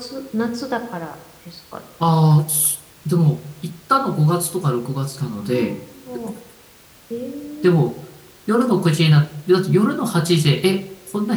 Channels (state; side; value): identical; both; correlation 1.00